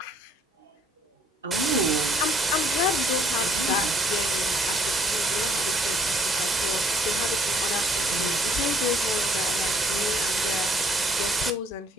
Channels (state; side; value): normal; both; correlation 0.64